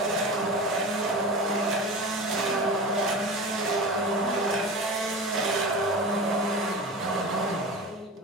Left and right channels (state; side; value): normal; both; correlation 0.30